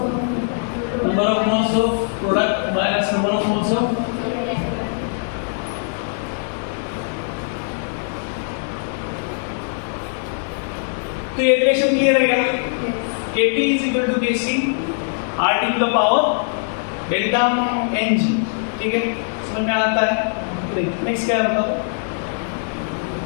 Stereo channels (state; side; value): silent; right; digital silence